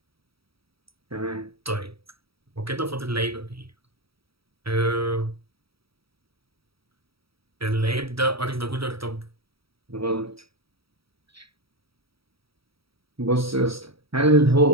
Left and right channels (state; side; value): late; left; 0.76 ms